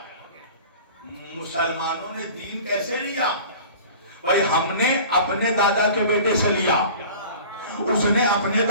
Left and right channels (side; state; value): both; inverted; correlation -0.42